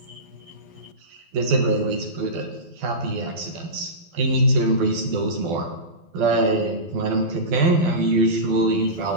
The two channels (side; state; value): left; late; 12 ms